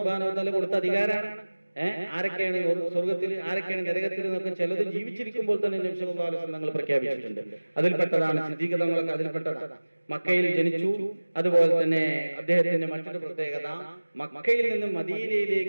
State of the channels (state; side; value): inverted; both; correlation -1.00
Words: വ തആല കൊടുത്ത അധികാരമാണ്. ആരൊക്കെയാണ് സ്വർഗത്തിൽ, ആരൊക്കെയാണ് നരകത്തിൽ എന്നൊക്കെ ചിലത് ജീവിച്ചിരിക്കുമ്പോൾ തന്നെ നബി സല്ലല്ലാഹു അലൈഹി വസല്ലം തങ്ങൾ പ്രഖ്യാപിച്ചിട്ടുണ്ട്. അതിൽപ്പെട്ടതാണ് സിദ്ദീഖ് തങ്ങളൊക്കെ അതിൽപ്പെട്ടതാണ്. മക്കയിൽ ജനിച്ചു. അതുപോലെ തന്നെ അദ്ദേഹത്തിന്റെ മറ്റൊരു പ്രത്യേകത, മക്കയിൽ നിന്ന്